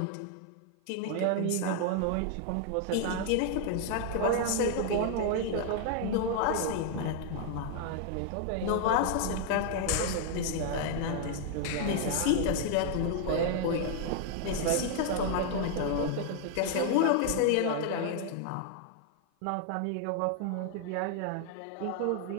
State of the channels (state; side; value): different; both; correlation 0.00